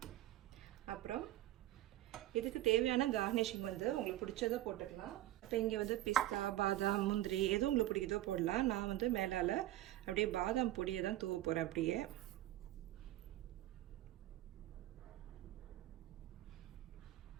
அப்புறம் இதுக்கு தேவையான கார்னிஷிங் உங்களுக்கு பிடிச்சதை போட்டுக்கலாம். இப்போ இங்கே பிஸ்தா, பாதாம், முந்திரி எதுவும் உங்களுக்கு பிடிக்குதோ போடலாம். நான் மேலால் அப்படியே பாதாம் பொடியை தான் தூவ போகிறேன். அப்படியே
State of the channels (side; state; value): left; quieter; 15.0 dB